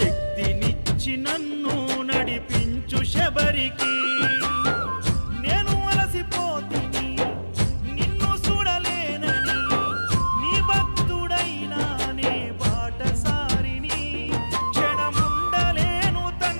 నన్ను నడిపించు శబరికి. నేను అలసిపోతిని నిన్ను చూడలేనని, నీ భక్తుడైనా నే బాటసారిని. క్షణముండలేను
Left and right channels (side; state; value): both; inverted; correlation -1.00